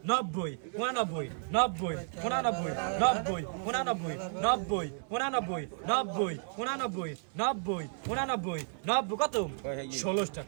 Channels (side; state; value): left; silent; 56 dB below the other